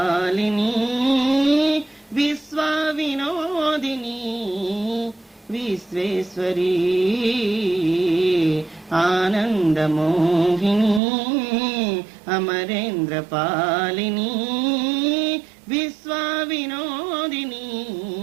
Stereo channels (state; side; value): drops out; left; at 11.0 s